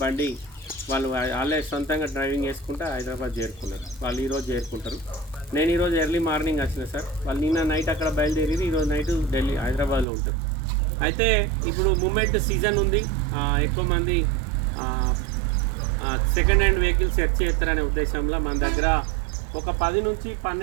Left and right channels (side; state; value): left; drops out; at 10.1 s